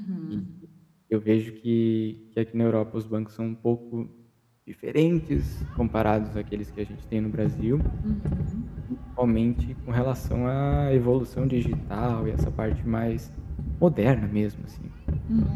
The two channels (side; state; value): both; identical; correlation 1.00